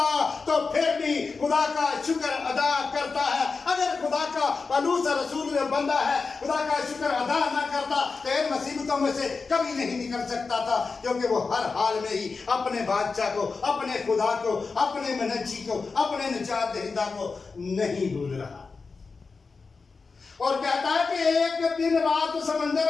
तो फिर भी खुदा का शुक्र अदा करता है। अगर खुदा का पलूस रसूल में बंदा है, खुदा का शुक्र अदा ना करता तो इन मुसीबतों में से कभी नहीं निकल सकता था, क्योंकि वो हर हाल में ही अपने बादशाह को, अपने खुदा को, अपने मनज्जी को, अपने निजात दहिंदा को नहीं भूल रहा। और कहता है कि एक दिन रात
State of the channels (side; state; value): right; quieter; 4.5 dB